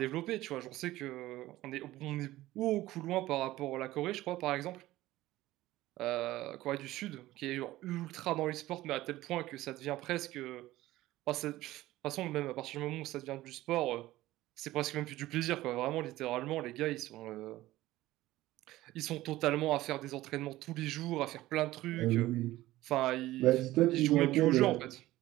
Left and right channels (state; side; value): quieter; left; 16.4 dB